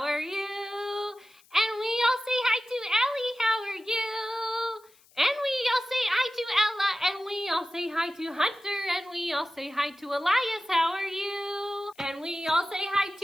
are you? And we all say hi to Ellie, how are you? And we all say hi to Ella, and we all say hi to Hunter, and we all say hi to Elias, how are you? And we all say hi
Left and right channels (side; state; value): left; noise; hiss, 29 dB below the sound